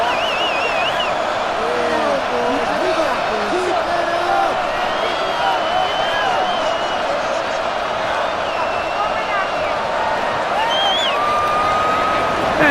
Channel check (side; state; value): both; identical; correlation 1.00